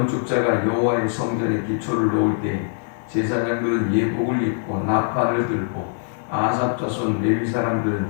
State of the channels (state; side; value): silent; right; digital silence